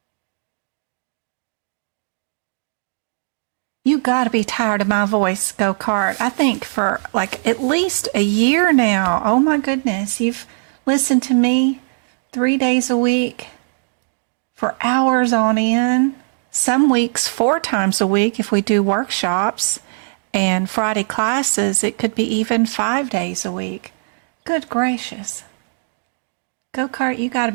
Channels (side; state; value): left; silent; digital silence